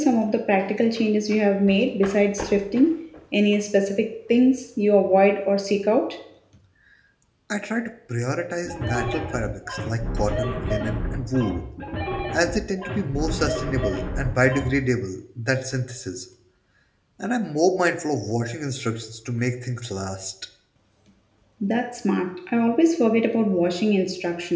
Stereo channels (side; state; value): both; identical; correlation 1.00